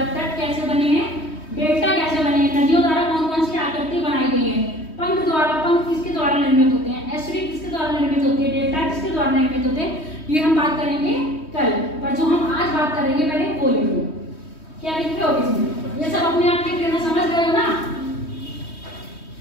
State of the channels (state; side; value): late; right; 3.2 ms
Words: तट कैसे बने हैं, डेल्टा कैसे बने हैं, नदियों द्वारा कौन कौन सी आकृति बनाई गई है, पंख द्वारा, पंख किसके द्वारा निर्मित होते हैं, एस्ट्री किसके द्वारा निर्मित होती है, डेल्टा किसके द्वारा निर्मित होते हैं, ये हम बात करेंगे कल। पर जो हम आज बात करेंगे पहले वो लिखो, क्या लिखे हो इसमें, ये सब अपने आप लिख लेना, समझ गए हो ना।